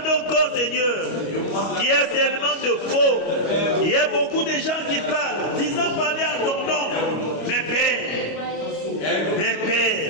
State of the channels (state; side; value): late; right; 25 ms